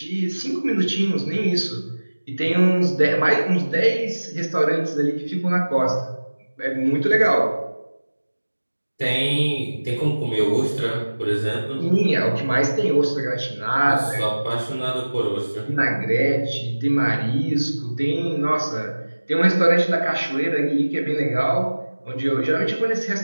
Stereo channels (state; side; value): inverted; both; correlation -1.00